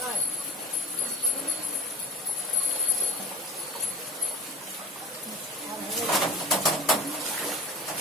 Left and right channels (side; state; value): both; normal; correlation 0.31